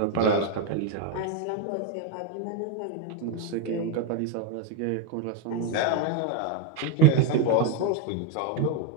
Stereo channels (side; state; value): both; different; correlation 0.02